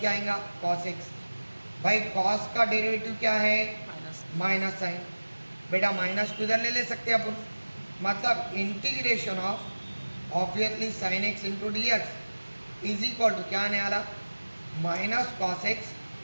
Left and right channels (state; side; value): inverted; both; correlation -1.00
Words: आएगा? Cos x. भाई कॉस का डेरिवेटिव क्या है? Minus sign. बेटा माइनस को इधर ले सकते हैं अपन, मतलब integration of obviously sine x into d x is equal to क्या आने वाला? Minus cos x